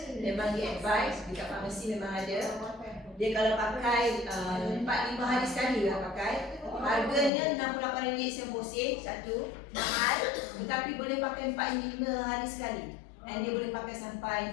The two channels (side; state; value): right; drops out; at 7.3 s